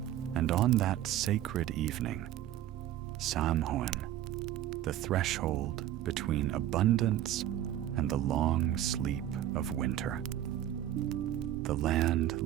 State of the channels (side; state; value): left; quieter; 12.3 dB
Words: And on that sacred evening, Samhain, the threshold between abundance and the long sleep of winter, the